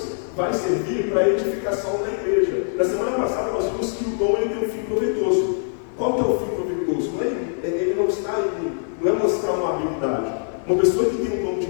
vai servir para a edificação da igreja. Na semana passada nós vimos que o dom ele tem um fim proveitoso. Qual que é o fim proveitoso? Ele não está não é mostrar uma habilidade. Uma pessoa que tem o dom de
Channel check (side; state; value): right; silent; 60 dB below the other